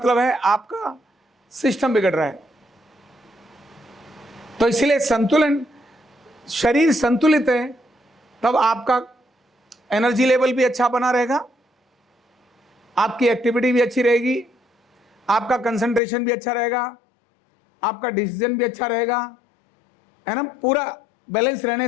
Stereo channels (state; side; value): drops out; right; at 16.0 s